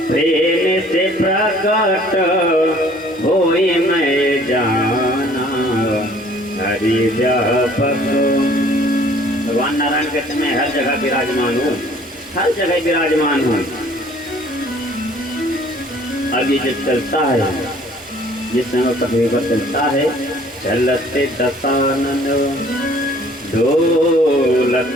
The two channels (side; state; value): both; normal; correlation 0.55